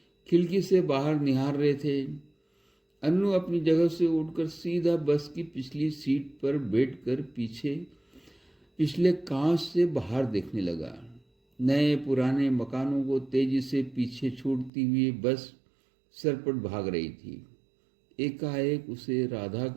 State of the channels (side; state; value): left; drops out; at 14.7 s